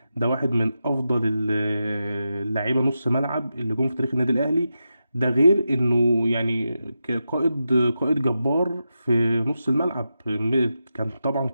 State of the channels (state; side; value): inverted; both; correlation -0.89